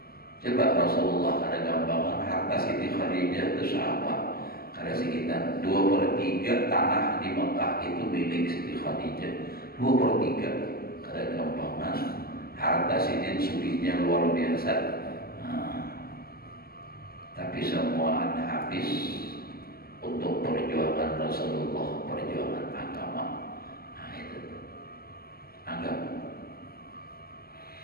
Coba Rasulullah ada gambaran harta Siti Khadijah itu siapa? Karena sekitar 2/3 tanah di Mekah itu milik Siti Khadijah. 2/3 karena gampangan harta Siti sugihnya luar biasa. Nah, tapi semua habis untuk perjuangan Rasulullah, perjuangan agama. Nah itu agama.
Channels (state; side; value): late; right; 0.44 ms